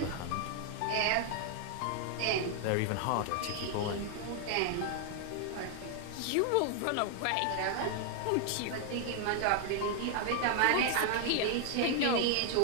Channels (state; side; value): different; both; correlation 0.00